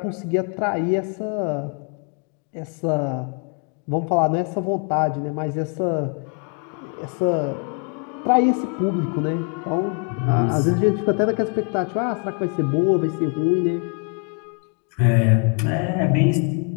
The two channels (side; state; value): right; quieter; 38.1 dB